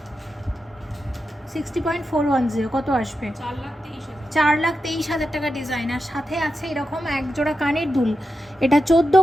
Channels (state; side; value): normal; both; correlation 0.89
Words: 60.410। কত আসবে? 4,23,000 টাকা ডিজাইন। আর সাথে আছে এরকম এক জোড়া কানের দুল। এটা 14